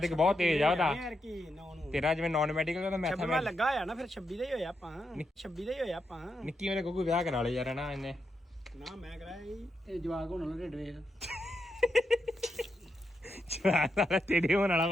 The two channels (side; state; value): both; normal; correlation 0.84